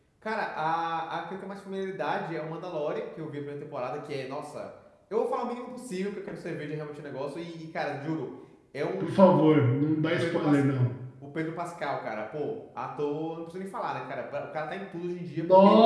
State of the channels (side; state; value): both; identical; correlation 1.00